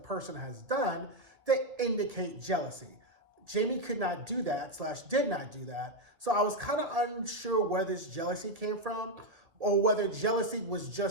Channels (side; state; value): left; late; 1.8 ms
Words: has done that indicate jealousy. Jamie could not do that, / did not do that, so I was kind of unsure where this jealousy came from, or whether jealousy was